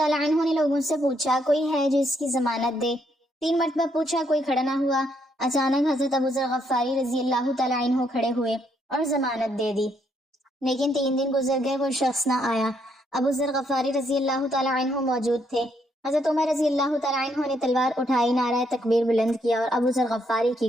عنہ نے لوگوں سے پوچھا کوئی ہے جو اس کی ضمانت دے۔ 3 مرتبہ پوچھا، کوئی کھڑا نہ ہوا۔ اچانک حضرت ابو ذر غفاری رضی اللہ تعالیٰ عنہ کھڑے ہوئے اور ضمانت دے دی، لیکن 3 دن گزر گئے، وہ شخص نہ آیا۔ ابو ذر غفاری رضی اللہ تعالیٰ عنہ موجود تھے۔ حضرت عمر رضی اللہ تعالیٰ عنہ نے تلوار اٹھائی، نعرہ تکبیر بلند کیا اور ابو ذر غفاری کی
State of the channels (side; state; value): both; normal; correlation 0.73